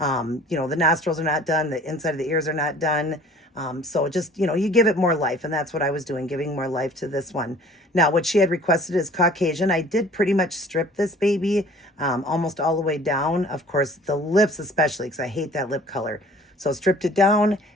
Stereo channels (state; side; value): normal; both; correlation 0.50